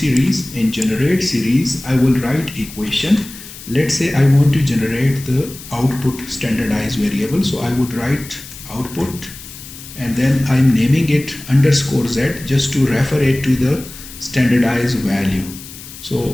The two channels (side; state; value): left; noise; hiss, 15 dB below the sound